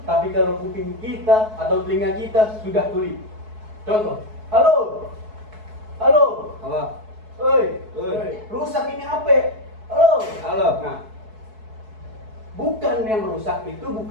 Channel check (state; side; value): late; left; 4.6 ms